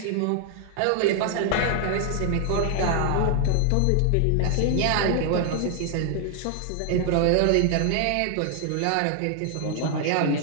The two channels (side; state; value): both; different; correlation 0.00